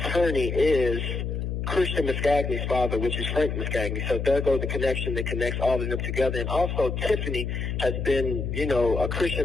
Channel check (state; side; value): noise; left; hum, 3 dB below the sound